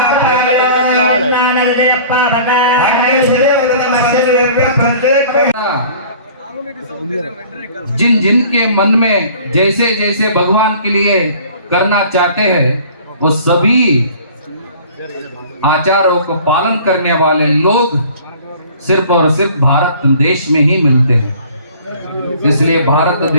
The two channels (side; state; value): both; inverted; correlation -0.48